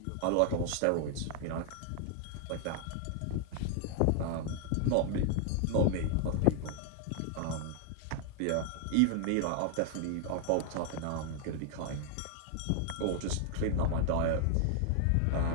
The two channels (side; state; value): both; different; correlation 0.00